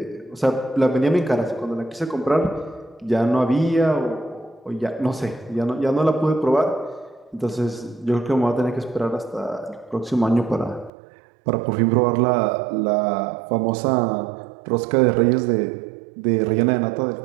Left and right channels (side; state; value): left; drops out; at 10.9 s